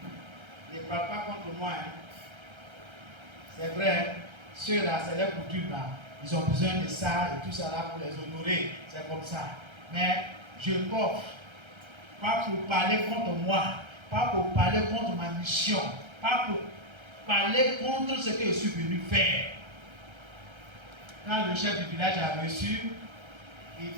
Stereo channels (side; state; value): left; late; 1.3 ms